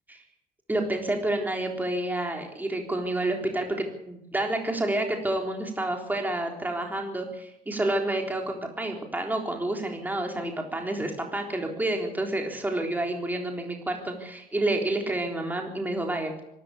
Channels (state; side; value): normal; both; correlation 0.76